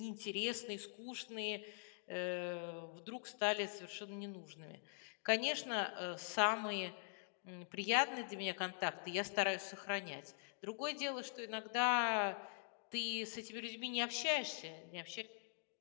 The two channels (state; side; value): silent; right; digital silence